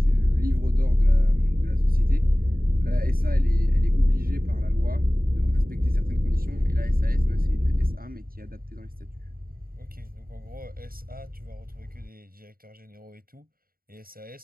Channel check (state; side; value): late; left; 0.42 ms